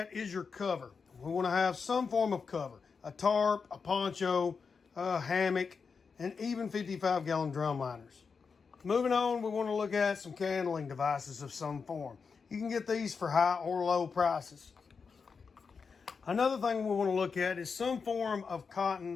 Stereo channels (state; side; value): quieter; right; 5.4 dB